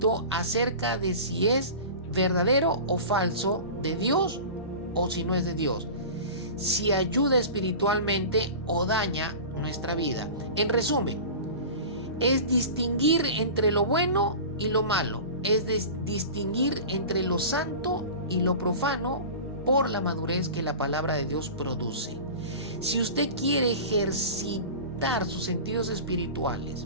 acerca de si es verdadero o falso de Dios o si no es de Dios, si ayuda espiritualmente o daña nuestra vida. En resumen, es distinguir entre lo bueno y lo malo, es distinguir entre lo santo y lo profano por la madurez que la palabra de Dios produce. Si usted quiere ejercitar sus sentidos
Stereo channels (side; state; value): both; inverted; correlation -0.34